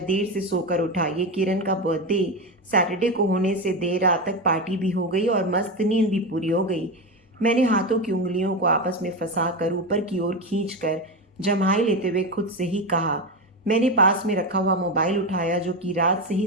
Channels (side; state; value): both; normal; correlation 0.16